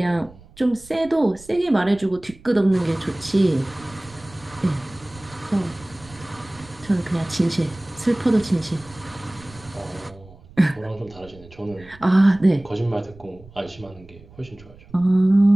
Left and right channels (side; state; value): right; noise; rumble, 22 dB below the sound